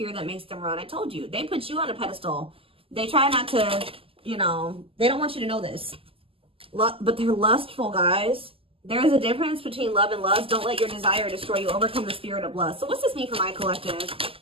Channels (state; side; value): late; left; 0.26 ms